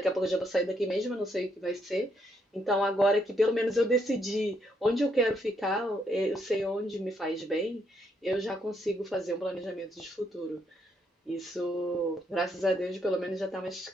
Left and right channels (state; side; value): normal; both; correlation 0.75